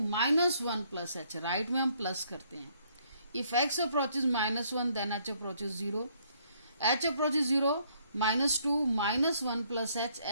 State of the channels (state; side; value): inverted; both; correlation -0.66